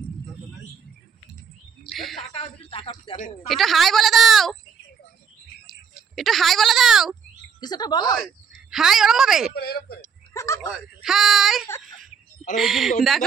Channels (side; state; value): left; quieter; 6.7 dB